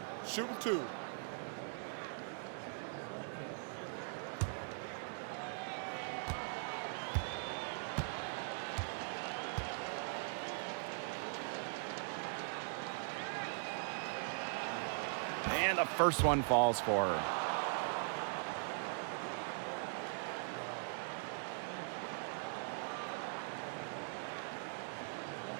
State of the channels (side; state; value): left; silent; digital silence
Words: Shooting two. And the first one falls for her.